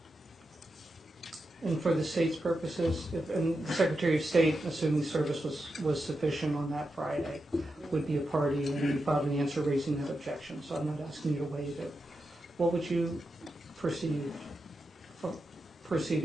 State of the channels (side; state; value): both; normal; correlation 0.88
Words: And for the state's purposes, and the Secretary of State, assuming service was sufficient on that Friday, would be a party, and you filed an answer raising that objection, so I'm not asking you to waive it. What would you proceeding